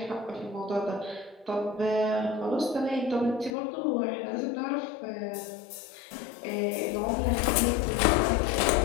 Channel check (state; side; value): drops out; right; at 3.5 s